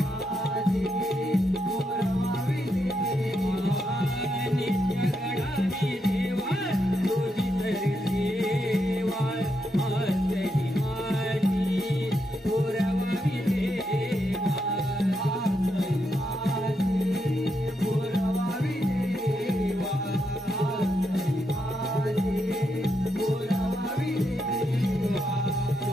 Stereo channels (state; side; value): normal; both; correlation 0.81